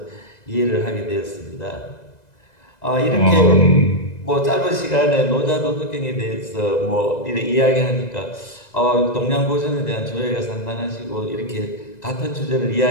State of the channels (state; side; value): late; right; 2.0 ms